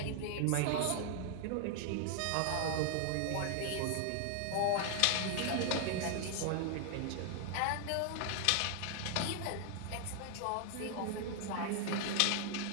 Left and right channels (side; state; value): both; different; correlation 0.00